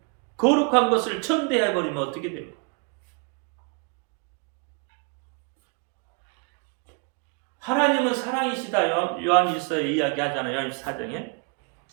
거룩한 것을 천대해 버리면 어떻게 돼요? 하나님은 사랑이시다. 요한일서에 이야기하잖아요. 요한일서 4장에.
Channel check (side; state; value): left; quieter; 35.0 dB